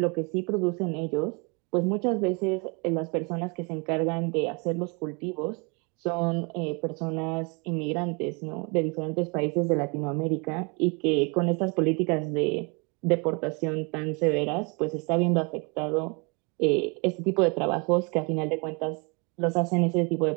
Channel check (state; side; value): quieter; left; 31.9 dB